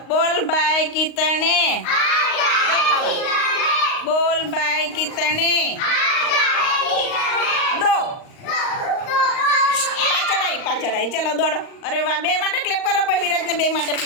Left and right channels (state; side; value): late; right; 38 ms